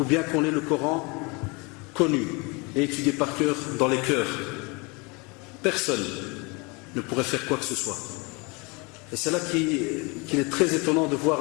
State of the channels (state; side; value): quieter; right; 28.6 dB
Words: bien qu'on ait le Coran connu et étudié par cœur dans les cœurs, personne ne pourrait faire quoi que ce soit. Et c'est là qu'il est très étonnant de